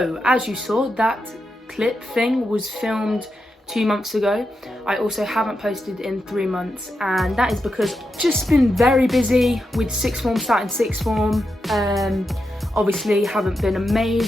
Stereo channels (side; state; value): both; normal; correlation 0.87